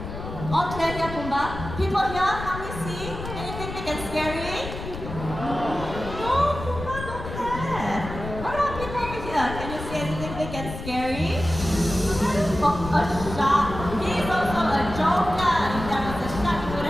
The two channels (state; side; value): noise; left; rumble, 9 dB below the sound